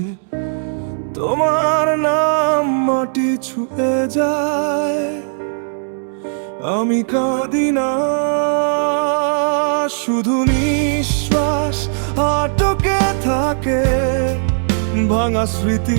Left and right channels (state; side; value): silent; left; digital silence